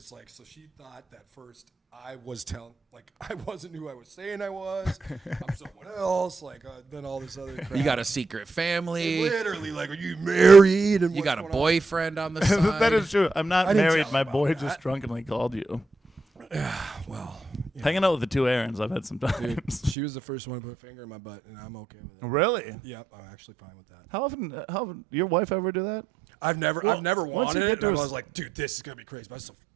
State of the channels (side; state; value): left; drops out; at 20.0 s